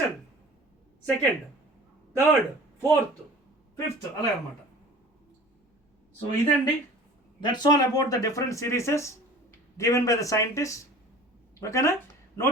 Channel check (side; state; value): both; normal; correlation 0.43